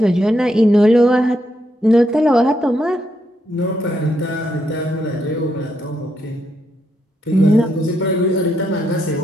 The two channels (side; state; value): both; normal; correlation 0.79